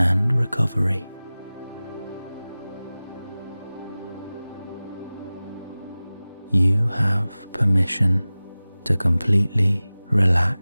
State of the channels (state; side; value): inverted; both; correlation -0.98